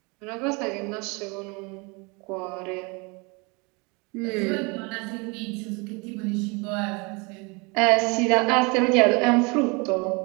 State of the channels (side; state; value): left; quieter; 29.1 dB